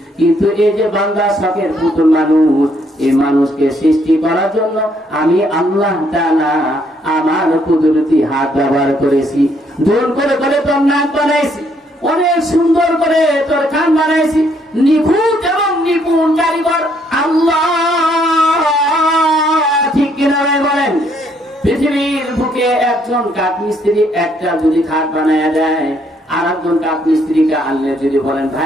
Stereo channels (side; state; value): both; normal; correlation 0.69